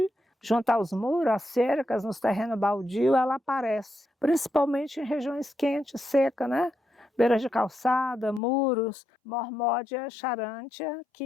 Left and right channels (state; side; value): drops out; right; at 8.4 s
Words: junto aos muros, às cercas, nos terrenos baldios, ela aparece, principalmente em regiões quentes, secas, né? Beiras de calçada, muros, Mormódia charantia,